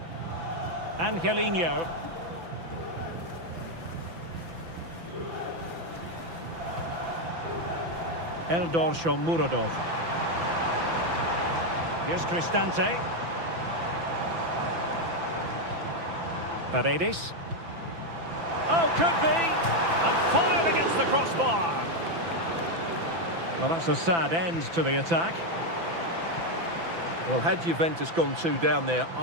Angelino. Eldor Shomurodov. Here's Cristante. Paredes. Oh, could be! And fired against the crossbar. Well, that's a sad end to the attack. Well, had Juventus gone 2 down there,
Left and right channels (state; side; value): late; left; 6.0 ms